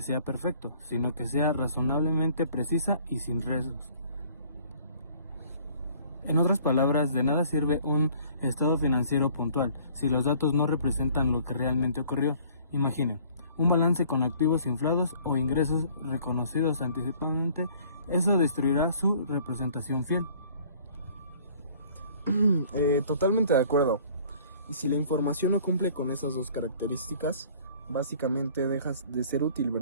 sea perfecto, sino que sea razonablemente precisa y sin riesgos. En otras palabras, de nada sirve un estado financiero puntual si los datos no representan lo que realmente ocurrió. Imaginen, un balance con activos inflados o ingresos reconocidos anticipadamente. Eso destruirá su representación fiel. Totalmente de acuerdo. Y si la información no cumple con esas dos características, básicamente dejas de ser útil,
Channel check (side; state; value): both; inverted; correlation -0.54